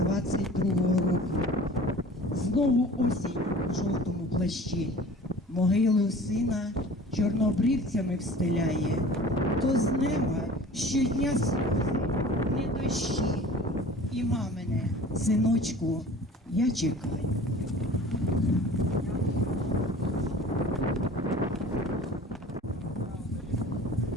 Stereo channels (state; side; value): normal; both; correlation 0.43